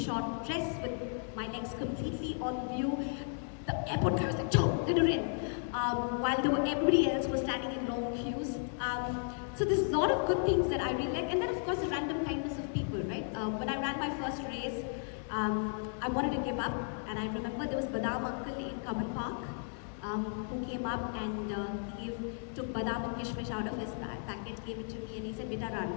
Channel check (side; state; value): right; silent; 55 dB below the other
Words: dress with my legs completely on view. The airport guy was like, "Joe, let her in," while everybody else was standing in long queues. So there's a lot of good things that I really like, and then of course the random kindness of people, right? When I ran my first race, I wanted to give up, and I remember there was Badam uncle in Kaman Park, who came up and he took badam and kishmish out of his packet, gave it to me, and he said, "Beta, run."